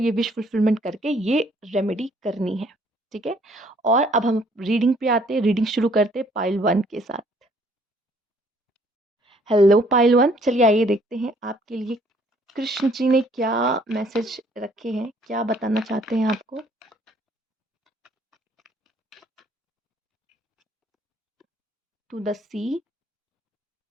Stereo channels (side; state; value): both; normal; correlation 0.62